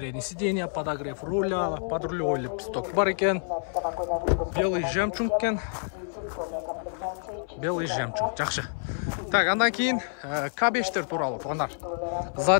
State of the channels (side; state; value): right; silent; 60 dB below the other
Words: сиденья, подогрев руля, подрулевой лепесток бар екен, белый жемчуг екен, белый жемчуг, жақсы. Так, андан кейін K5-тер туралы туғандар.